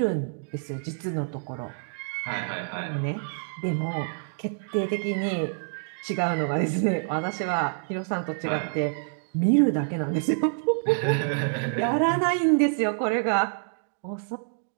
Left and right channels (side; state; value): left; silent; digital silence